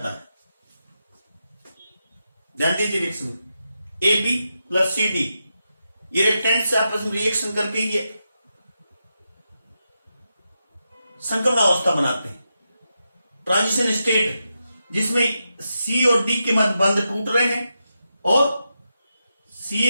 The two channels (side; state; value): both; inverted; correlation -0.87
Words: है। ध्यान दीजिए reaction, A B plus C D, ये रिएक्टेंट से आपस में रिएक्शन करके ये संक्रमण अवस्था बनाते हैं। ट्रांजिशन स्टेट जिसमें सी और डी के मध्य बंध टूट रहे हैं और सी